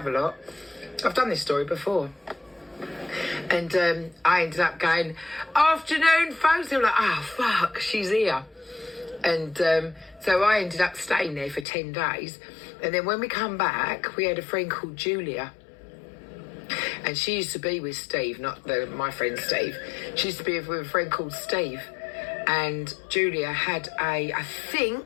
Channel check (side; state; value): right; drops out; at 11.7 s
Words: lot. I've done this story before. And I ended up going, afternoon, folks. They were like, oh, fuck, she's here. And so I ended up staying there for 10 days. And then when we come back, we had a friend called Julia. And she used to be with Steve, not my friend Steve. She used to be with a friend called Steve. And Julia had I